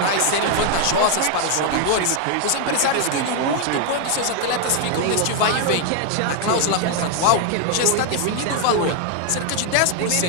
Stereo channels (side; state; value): both; different; correlation 0.00